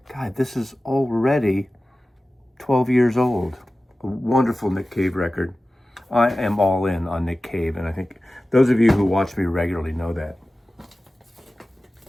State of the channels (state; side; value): normal; both; correlation 0.96